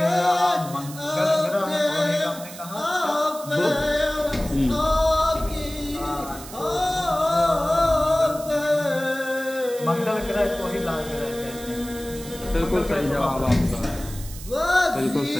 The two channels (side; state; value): right; noise; hiss, 15 dB below the sound